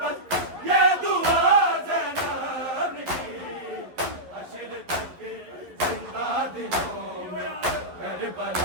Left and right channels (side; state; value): left; late; 11 ms